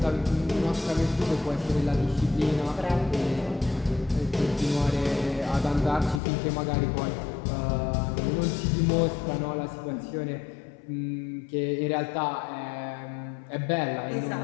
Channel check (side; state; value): right; drops out; at 6.2 s